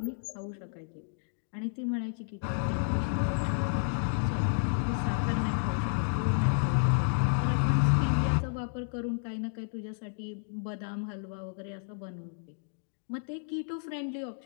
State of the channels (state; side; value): silent; right; digital silence